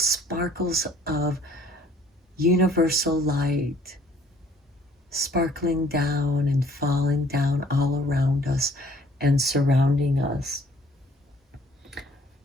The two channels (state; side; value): normal; both; correlation 0.58